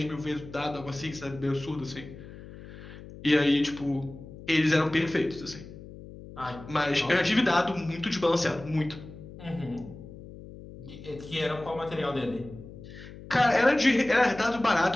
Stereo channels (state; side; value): noise; left; hum, 15 dB below the sound